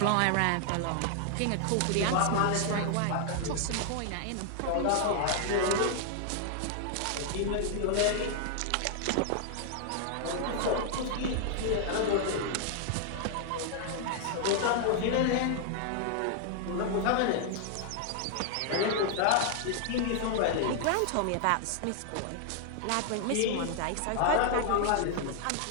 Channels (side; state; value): both; different; correlation 0.00